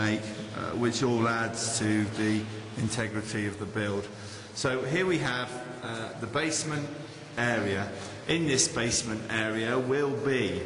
which all adds to the integrity of the build. So here we have the basement area. In this basement area will be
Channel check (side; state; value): both; identical; correlation 1.00